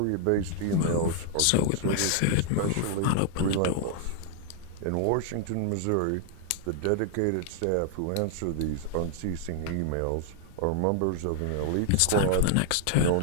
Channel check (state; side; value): different; both; correlation 0.00